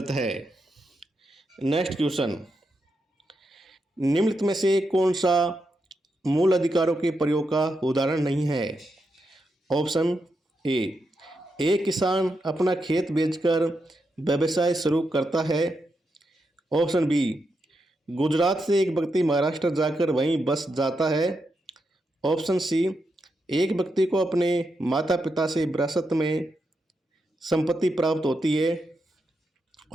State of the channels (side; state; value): both; normal; correlation 0.84